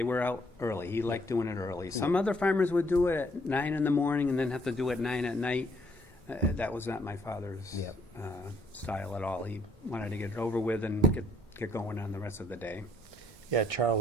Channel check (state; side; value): normal; both; correlation 0.65